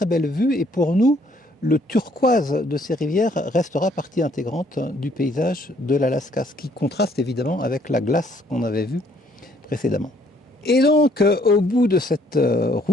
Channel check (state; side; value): normal; both; correlation 0.64